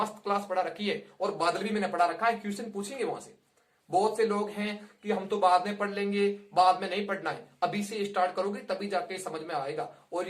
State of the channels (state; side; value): identical; both; correlation 1.00